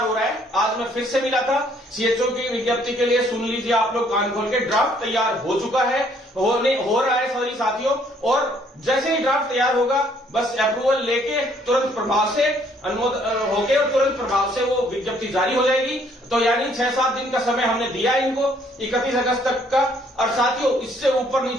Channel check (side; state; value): both; normal; correlation 0.64